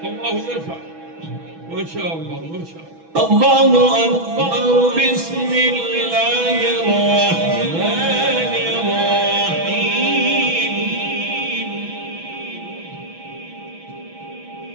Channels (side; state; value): left; late; 6.1 ms